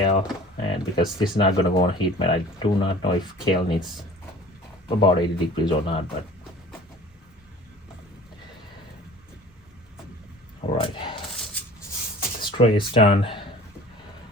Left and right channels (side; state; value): both; normal; correlation 0.45